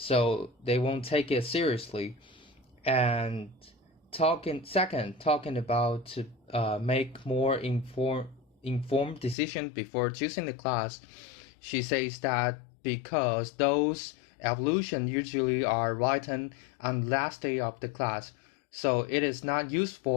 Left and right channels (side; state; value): right; drops out; at 9.3 s